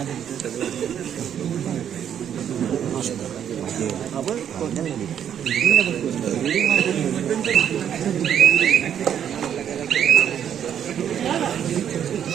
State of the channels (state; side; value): quieter; left; 9.2 dB